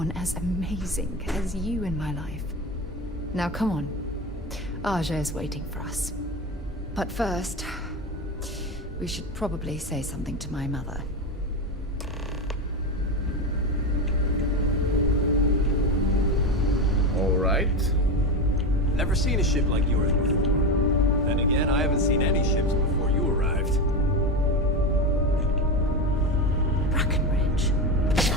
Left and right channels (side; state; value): both; normal; correlation 0.18